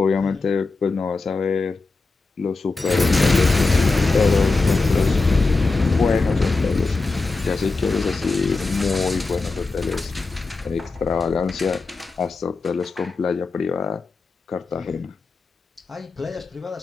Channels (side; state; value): right; quieter; 3.8 dB